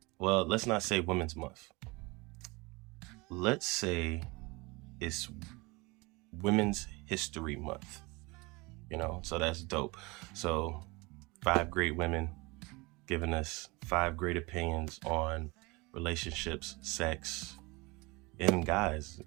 Well, let's not say Women's Month. Let's say it's Women's History Month. You know, so that's dope. So 5 great women giving us 5 great opinions on relationships, sex, and guys.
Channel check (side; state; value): left; quieter; 25.1 dB